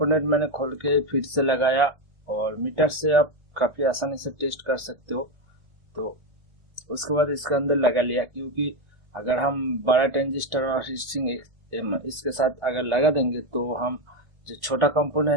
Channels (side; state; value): left; late; 1.4 ms